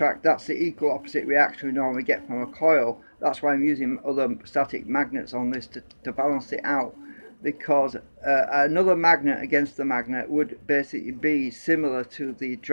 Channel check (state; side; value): inverted; both; correlation -1.00